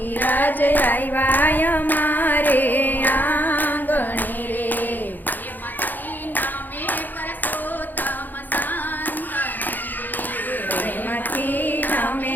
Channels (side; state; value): right; late; 0.087 ms